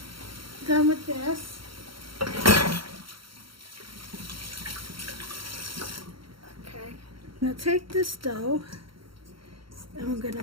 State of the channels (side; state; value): left; late; 0.74 ms